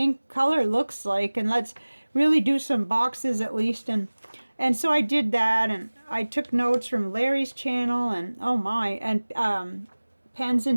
color looks like, and let's really do some boxes at least. And so I did that, and I took notes from Larry's channel, and oh my, and Pens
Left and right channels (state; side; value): inverted; both; correlation -1.00